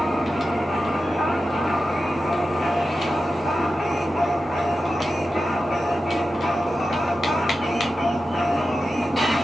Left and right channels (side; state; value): both; normal; correlation 0.92